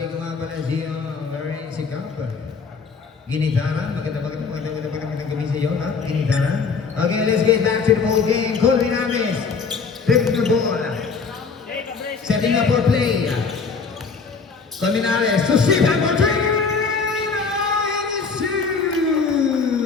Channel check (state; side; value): quieter; right; 5.1 dB